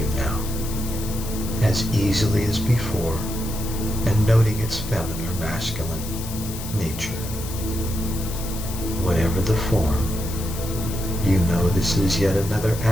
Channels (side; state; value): left; noise; hiss, 11 dB below the sound